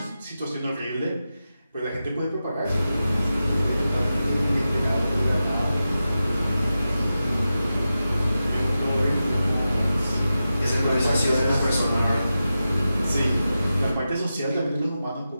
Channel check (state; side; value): inverted; both; correlation -0.92